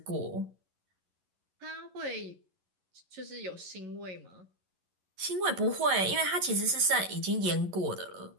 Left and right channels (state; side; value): late; left; 11 ms